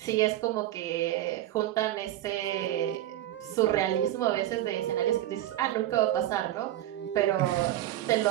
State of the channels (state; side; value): quieter; left; 13.9 dB